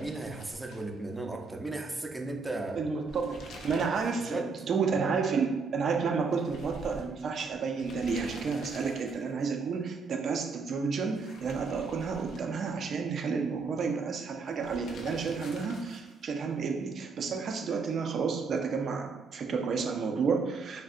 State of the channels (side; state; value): left; quieter; 4.6 dB